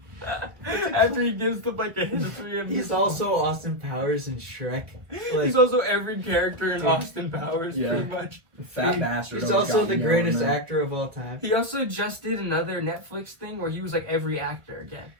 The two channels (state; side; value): late; left; 1.1 ms